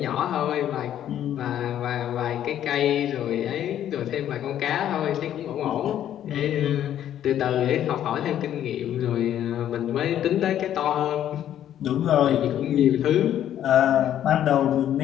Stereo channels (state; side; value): quieter; right; 11.0 dB